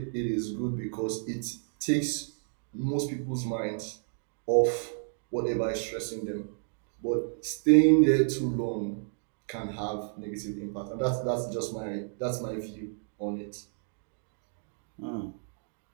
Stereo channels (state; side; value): silent; left; digital silence